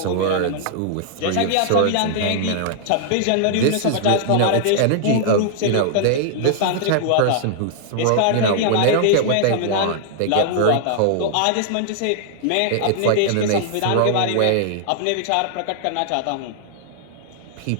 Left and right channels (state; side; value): different; both; correlation -0.01